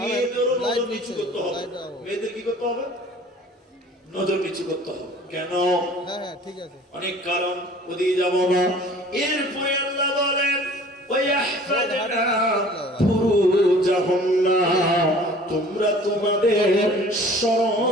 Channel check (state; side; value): normal; both; correlation 0.48